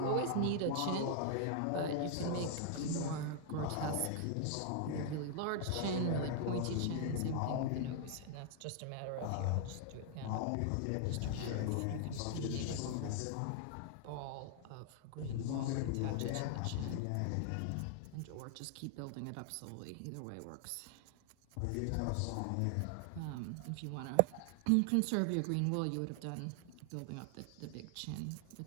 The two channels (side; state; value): both; different; correlation 0.00